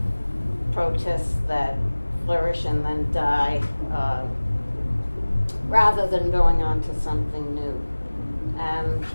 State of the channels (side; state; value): both; inverted; correlation -1.00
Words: protests that flourish and then die, rather than going on to something new. And